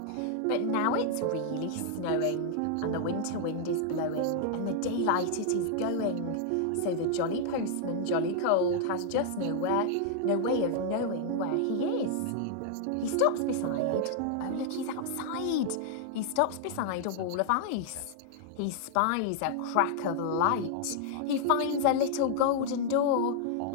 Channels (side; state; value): both; different; correlation -0.01